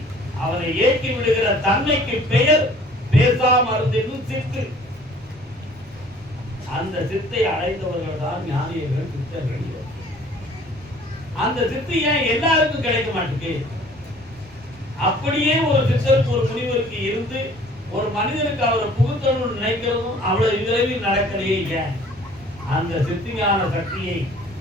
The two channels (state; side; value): normal; both; correlation 0.52